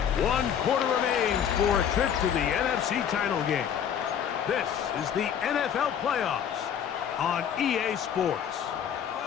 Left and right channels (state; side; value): quieter; right; 8.6 dB